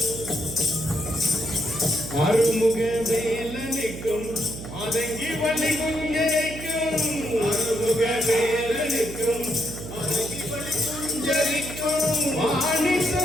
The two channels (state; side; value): noise; right; hum, 10 dB below the sound